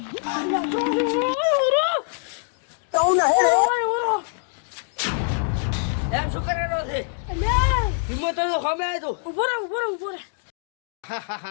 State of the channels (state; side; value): silent; right; digital silence